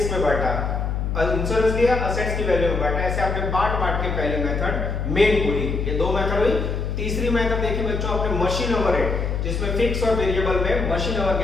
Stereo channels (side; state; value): left; noise; hum, 2 dB below the sound